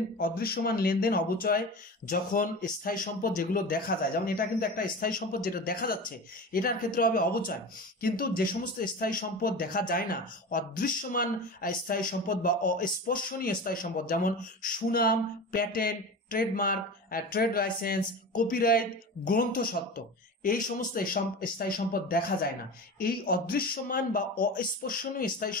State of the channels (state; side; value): normal; both; correlation 0.30